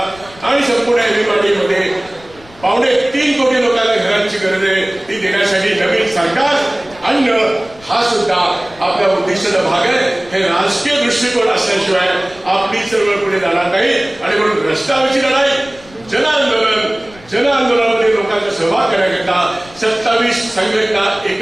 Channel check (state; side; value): noise; left; rumble, 24 dB below the sound